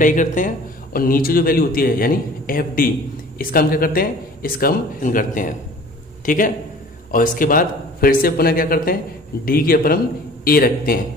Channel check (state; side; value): normal; both; correlation 0.46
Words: करते हैं, और नीचे जो वैल्यू होती है यानी FD, इसका हम क्या करते हैं, इसका हम करते हैं। ठीक है, और इसके बाद फिर से पुनः क्या करते हैं, d के ऊपर हम a रखते